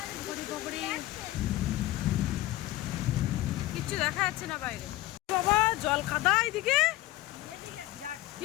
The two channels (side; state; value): right; quieter; 16.9 dB